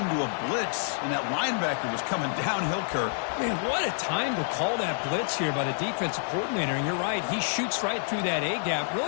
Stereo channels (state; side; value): silent; right; digital silence